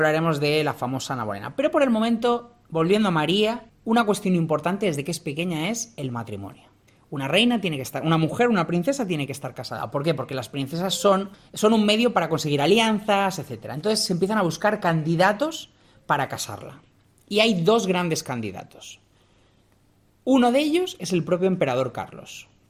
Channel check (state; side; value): identical; both; correlation 1.00